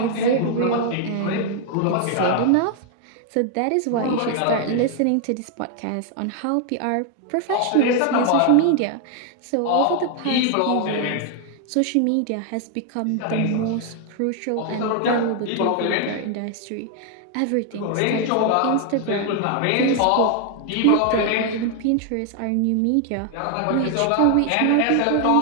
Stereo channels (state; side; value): different; both; correlation 0.00